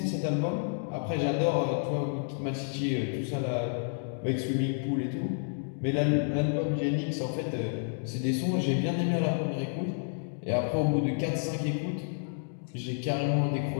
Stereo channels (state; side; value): silent; right; digital silence